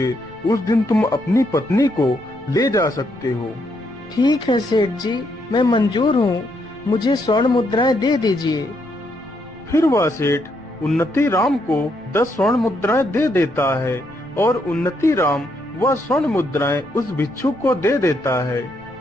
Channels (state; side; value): noise; left; rumble, 26 dB below the sound